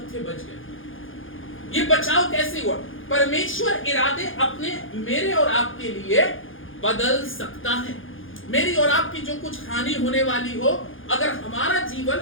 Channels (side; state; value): right; late; 0.58 ms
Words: थे बच गए। ये बचाव कैसे हुआ? परमेश्वर इरादे अपने मेरे और आपके लिए बदल सकता है। मेरी और आपकी जो कुछ हानि होने वाली हो, अगर हमारा जीवन